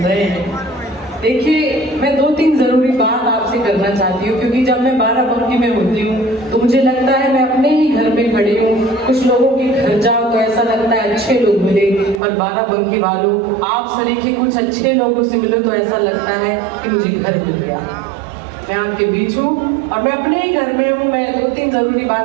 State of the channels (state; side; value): drops out; left; at 12.2 s